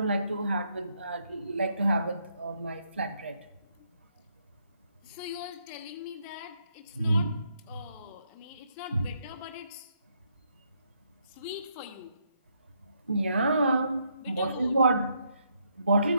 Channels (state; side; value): inverted; both; correlation -0.75